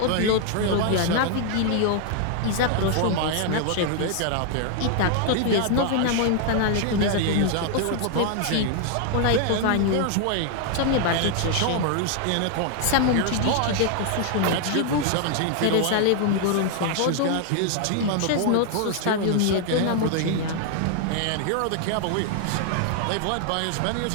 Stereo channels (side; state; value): both; different; correlation 0.00